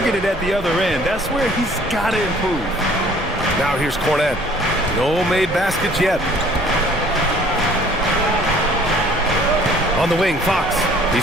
at the other end. That's where he's got to improve. Now here's Cornette. No made baskets yet. On the wing, Fox.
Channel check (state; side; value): normal; both; correlation 0.55